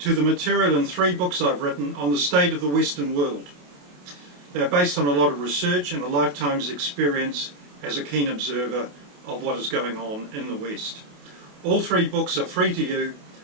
the material in 3 books I've written on the state of the Western world. They're based on a lot of research and a lifetime's experience as a keen observer of what is going on in the West. All 3 books are free to you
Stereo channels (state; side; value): late; left; 28 ms